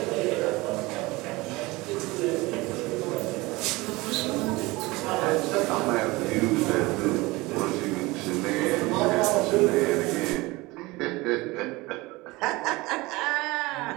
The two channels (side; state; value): left; quieter; 22.0 dB